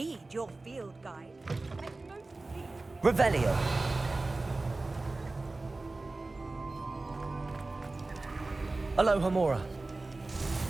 your field guide. Revelio. Aloha Mora.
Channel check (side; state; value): left; quieter; 3.2 dB